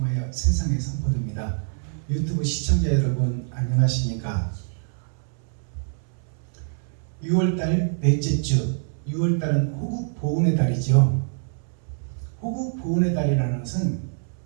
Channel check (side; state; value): left; silent; 62 dB below the other